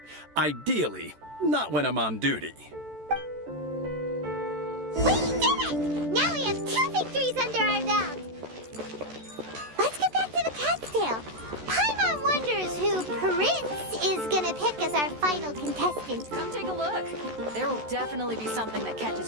ideally, not when I'm on duty. We did it! Now we have 2 victories under our belt. Let's get back to the cat's tail. Paimon wonders who Prince is gonna pick as our final contestant. Come take a look. There will definitely be something that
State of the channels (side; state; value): left; late; 14 ms